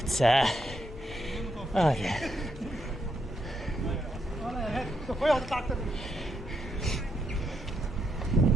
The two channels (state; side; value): normal; both; correlation 0.79